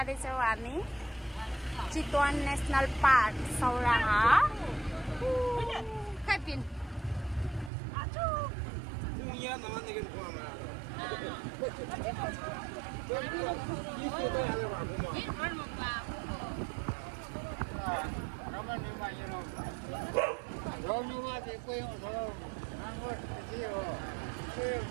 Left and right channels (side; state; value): left; drops out; at 7.7 s